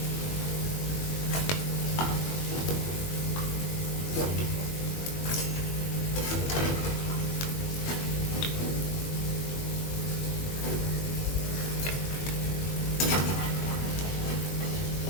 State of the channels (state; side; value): late; right; 21 ms